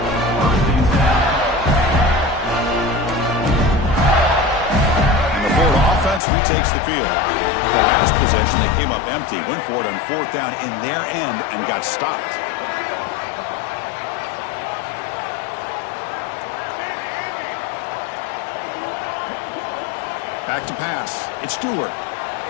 And the Florida offense retakes the field. The last possession, they came up empty. Went for it on fourth down in their end and got stopped. Back to pass. It's Stewart.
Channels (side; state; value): right; drops out; at 6.2 s